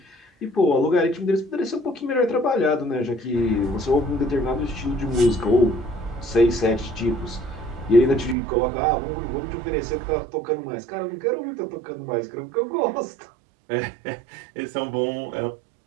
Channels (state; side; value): drops out; left; at 8.3 s